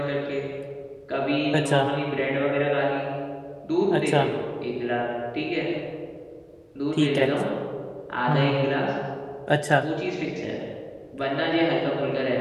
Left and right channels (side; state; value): both; identical; correlation 1.00